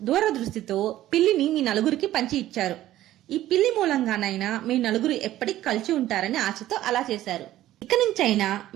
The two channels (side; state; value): left; quieter; 14.0 dB